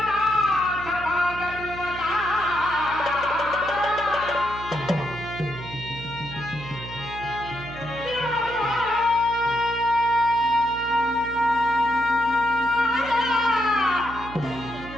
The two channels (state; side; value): noise; right; hum, 13 dB below the sound